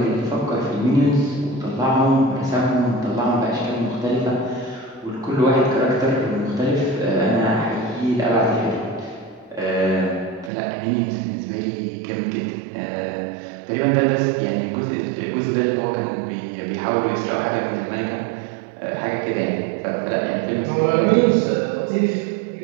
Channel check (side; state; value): left; drops out; at 10.5 s